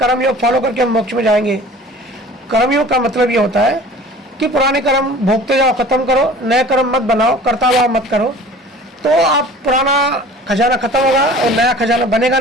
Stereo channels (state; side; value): normal; both; correlation 0.45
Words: योग फॉलो करके हम मोक्ष में जाएंगे। कर्म योग का मतलब ये होता है कि पुराने कर्म भोगते जाओ, खत्म करो, नए कर्म मत बनाओ, करता भाव मत करो, तो आप पुराना खजाना खत्म होगा और नया खजाना बनेगा